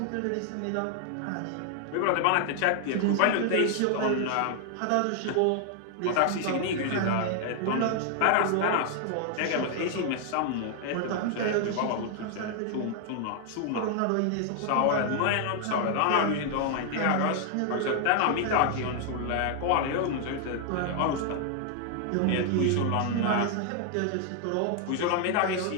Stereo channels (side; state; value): both; different; correlation 0.00